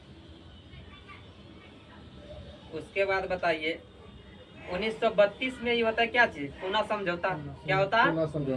उसके बाद बताइए 1932 में ये होता है क्या चीज, पूना समझौता। क्या होता है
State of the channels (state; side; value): identical; both; correlation 1.00